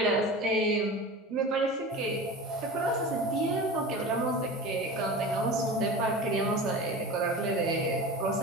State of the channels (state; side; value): normal; both; correlation 0.32